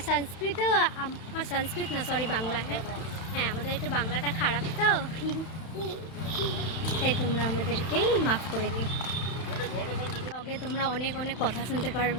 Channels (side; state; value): right; late; 31 ms